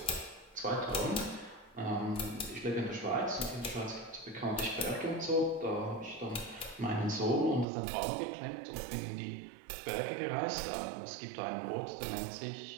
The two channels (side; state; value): left; drops out; at 7.7 s